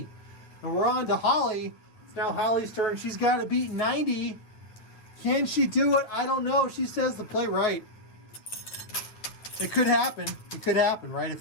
And we're on to Holly. It's now Holly's turn. She's got to beat 90. Can she do it? I don't know. She says to play right. It could happen. It could happen, right? If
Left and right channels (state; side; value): late; right; 9.5 ms